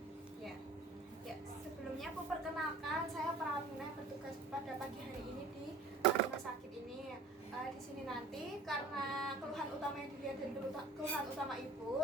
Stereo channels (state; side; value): quieter; left; 3.1 dB